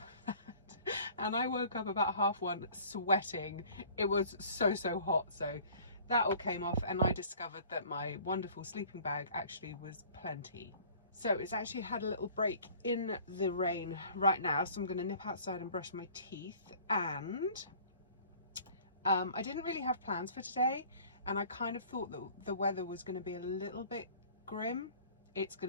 that and I woke up about 1:30 sweating. It was so hot, so that all came off and I discovered that my wonderful sleeping bag actually was plenty. So it's actually had a little break in the rain right now, so I'm going to nip outside and brush my teeth. And I didn't really have plans for today, and I kind of thought that the weather was going to be a little bit grim. It's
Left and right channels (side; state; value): both; inverted; correlation -0.50